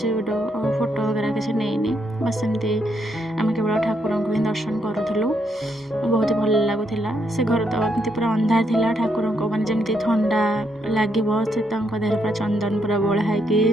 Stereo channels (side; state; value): both; normal; correlation 0.77